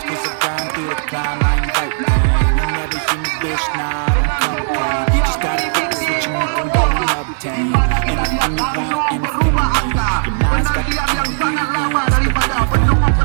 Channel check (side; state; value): left; silent; digital silence